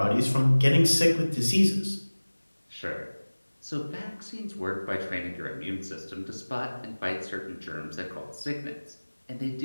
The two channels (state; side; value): inverted; both; correlation -1.00